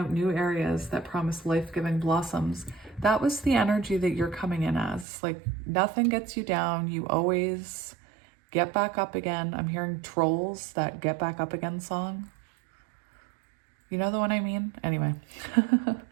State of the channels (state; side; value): drops out; left; at 5.1 s